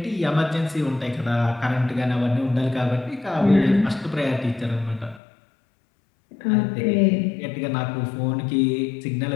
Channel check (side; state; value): right; drops out; at 5.2 s